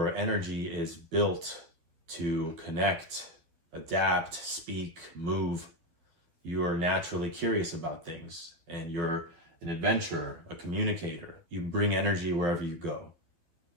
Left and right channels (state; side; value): late; left; 12 ms